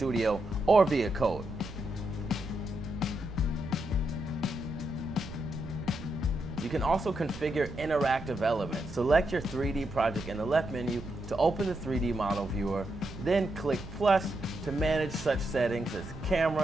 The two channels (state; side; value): noise; right; rumble, 13 dB below the sound